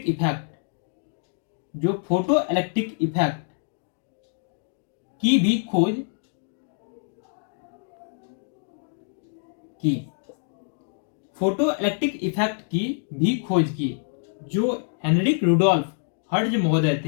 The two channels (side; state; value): right; silent; digital silence